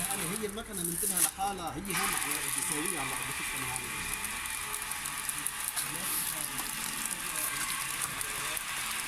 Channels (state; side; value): identical; both; correlation 1.00